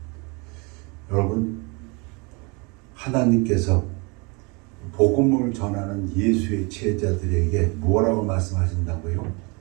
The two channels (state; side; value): quieter; left; 29.8 dB